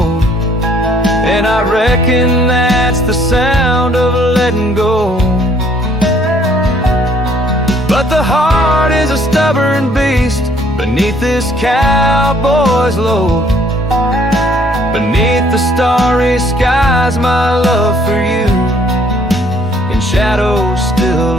and I reckon that's the sound of letting go. But the heart is a stubborn beast beneath this cowboy's load. Beneath the starry skies, my love for you in shadows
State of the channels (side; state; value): both; normal; correlation 0.62